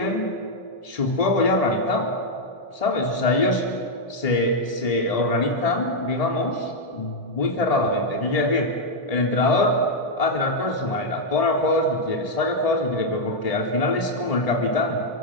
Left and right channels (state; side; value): late; right; 1.8 ms